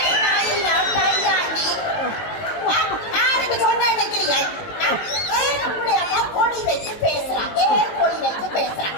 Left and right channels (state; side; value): late; right; 19 ms